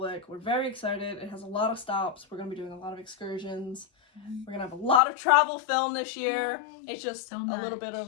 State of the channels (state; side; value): drops out; right; at 5.0 s